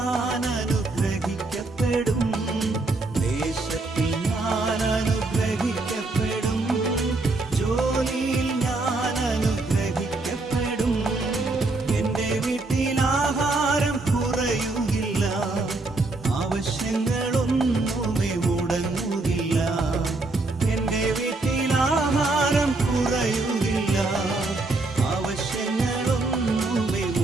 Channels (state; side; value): quieter; left; 3.2 dB